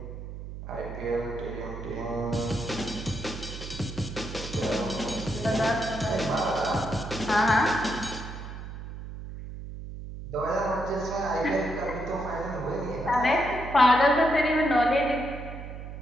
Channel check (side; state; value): right; noise; hum, 10 dB below the sound